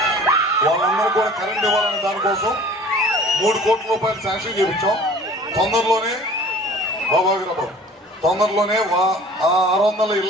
వాళ్ళందరూ కూడా కరెంట్ ఇవ్వాలనే దానికోసం 3 కోట్ల రూపాయలు శాంక్షన్ చేయించాం. తొందరలోనే తొందరలోనే ఆ 600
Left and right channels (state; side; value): normal; both; correlation 0.47